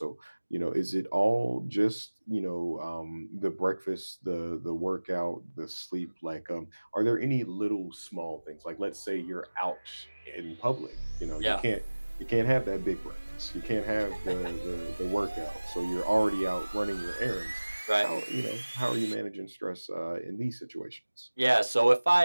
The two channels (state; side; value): inverted; both; correlation -1.00